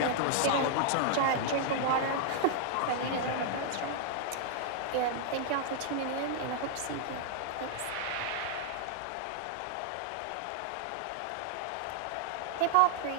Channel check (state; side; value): different; both; correlation 0.00